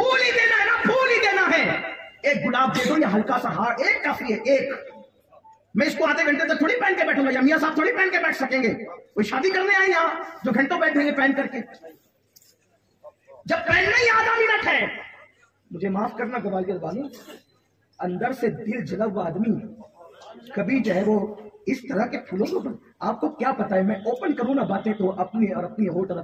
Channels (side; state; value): both; identical; correlation 1.00